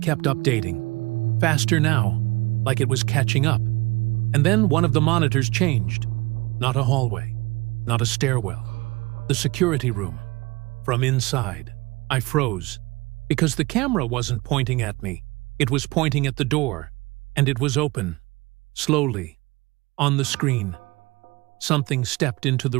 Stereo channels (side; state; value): left; quieter; 23.0 dB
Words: updating. Faster now, like it was catching up. And then one of the monitors changed. Not a hallway, not a stairwell. The security room. From inside, I froze, because the camera wasn't pointing at me. It was pointing at the door, and it was open. Slowly, on the screen, something stepped into the